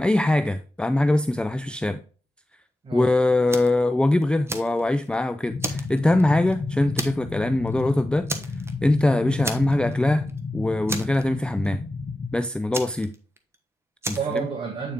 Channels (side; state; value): both; normal; correlation 0.92